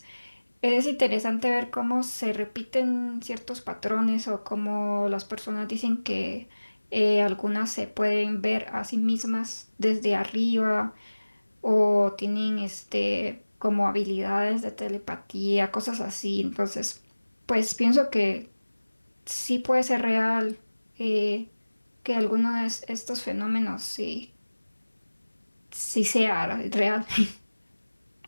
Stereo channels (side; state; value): both; inverted; correlation -1.00